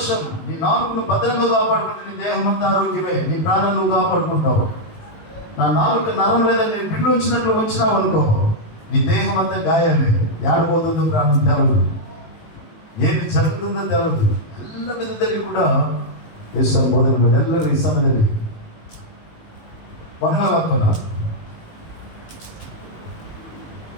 నీ 4ను భద్రంగా కాపాడుకుంటే నీ దేహం అంతా ఆరోగ్యమే, నీ ప్రాణం నువ్వు కాపాడుకుంటావు. నా 4 నరం లేదా నేను బిల్లు వచ్చినట్లు వచ్చినావు అనుకో, నీ దేహం అంతా గాయాలే. ఏడబోతుందో ప్రాణం తెలదు, ఏమి జరుగుతుందో తెలదు. ಎಲ್ಲ ವಿಧದಲ್ಲಿ ಕೂಡ ಯೇಸು ಬೋಧನೆ ಎಲ್ಲರೂ ಈ ಸಮಯದಲ್ಲಿ ಮನಗಾಕೋಣ.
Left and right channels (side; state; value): right; late; 19 ms